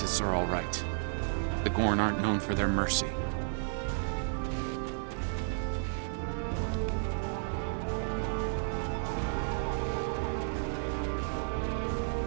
are all right. The Gorn aren't known for their mercy.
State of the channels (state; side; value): silent; left; 56 dB below the other